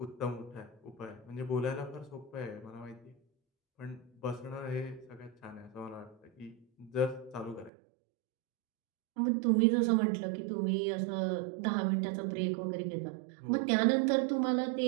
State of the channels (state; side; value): drops out; left; at 7.7 s